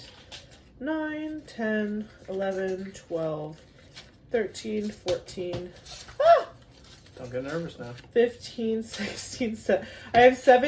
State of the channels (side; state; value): both; identical; correlation 1.00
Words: 9, 10, 11, 12, 13, 14, Don't get nervous now. 15, 16, 17. I have